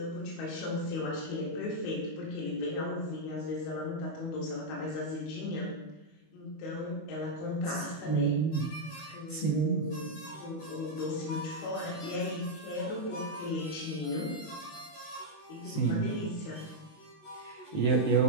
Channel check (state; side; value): late; right; 19 ms